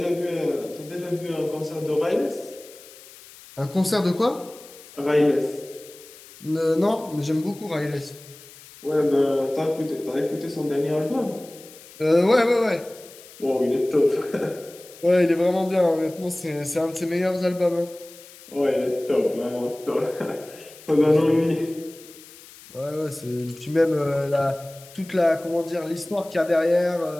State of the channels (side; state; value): left; noise; hiss, 20 dB below the sound